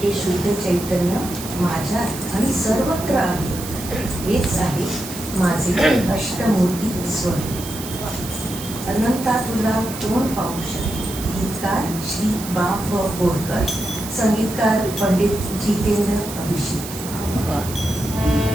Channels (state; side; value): noise; right; hiss, 11 dB below the sound